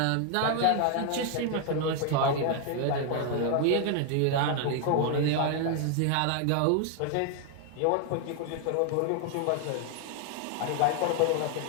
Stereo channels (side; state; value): both; different; correlation 0.00